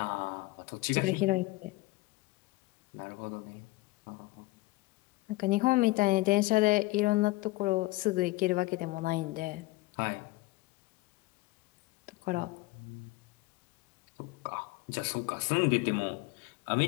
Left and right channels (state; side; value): quieter; right; 20.8 dB